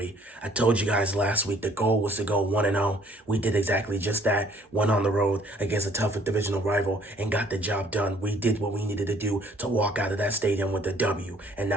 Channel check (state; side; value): normal; both; correlation 0.60